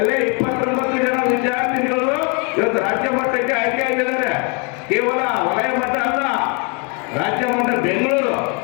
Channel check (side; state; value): right; quieter; 34.7 dB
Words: 29 ಜನ ವಿದ್ಯಾರ್ಥಿಗಳು ಇವತ್ತು ರಾಜ್ಯ ಮಟ್ಟಕ್ಕೆ ಆಯ್ಕೆ ಆಗಿದ್ದಾರೆ. ಕೇವಲ ವಲಯ ಮಟ್ಟ ಅಲ್ಲ, ರಾಜ್ಯ ಮಟ್ಟ ಬೆಂಗಳೂರು,